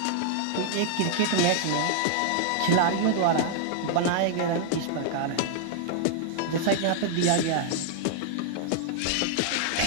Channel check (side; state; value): both; different; correlation 0.00